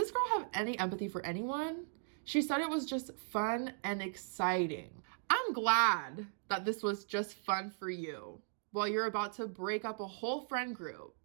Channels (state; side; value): silent; left; digital silence